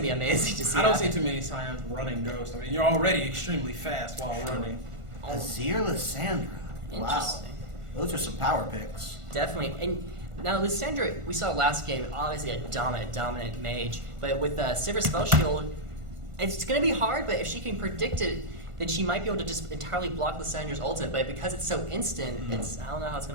be amazing to see. I don't see too many Scions running Ghost. I mean, you're already extremely fast while running. Azir Lysandra. Wow. Those are some power picks. Definitely. And now Lysandra, we saw last game, obviously a dominant mage. But with Sivir Spell Shield, it's going to be hard, but if she can predict it, then she might be able to just entirely block Lysandra's ultimate. But because it's so instant, I don't know how it's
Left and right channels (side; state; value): left; late; 1.5 ms